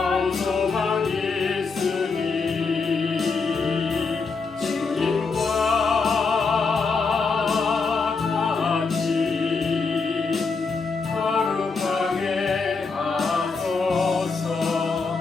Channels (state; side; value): quieter; right; 4.6 dB